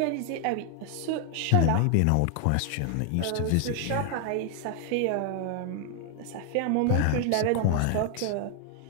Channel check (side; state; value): both; different; correlation 0.00